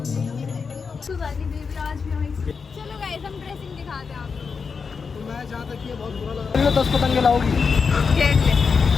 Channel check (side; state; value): right; quieter; 5.4 dB